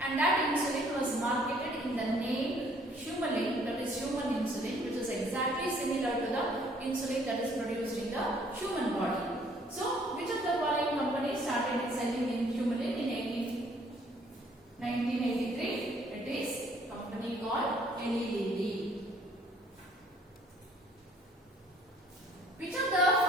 that insulin was marketed in the name Humulin, that is human insulin, which is exactly similar to the insulin that is produced in the human body. So, which of the following companies started selling in Humulin in 1983? It is a company called Eli Lilly. Which of the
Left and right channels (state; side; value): normal; both; correlation 0.61